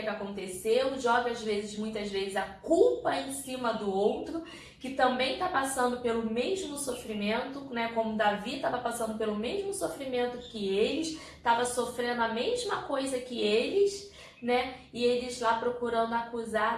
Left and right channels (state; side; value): identical; both; correlation 1.00